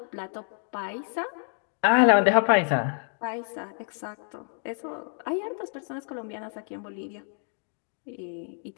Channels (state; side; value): silent; right; 59 dB below the other